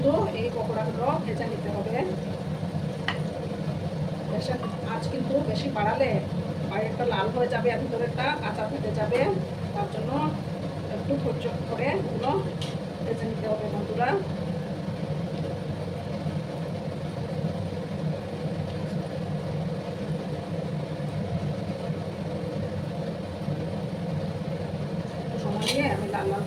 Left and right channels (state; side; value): identical; both; correlation 1.00